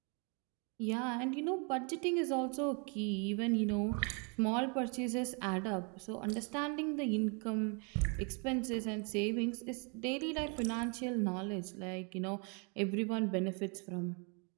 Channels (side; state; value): left; quieter; 35.7 dB